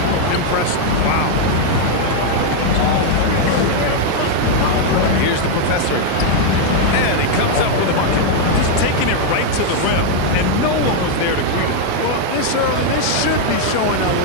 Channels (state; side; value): different; both; correlation 0.00